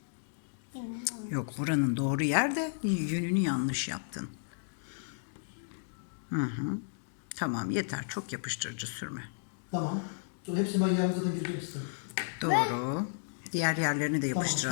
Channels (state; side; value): silent; right; digital silence